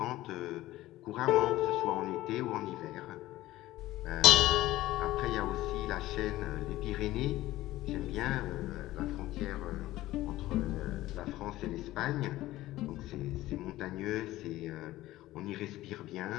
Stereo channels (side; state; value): right; quieter; 16.3 dB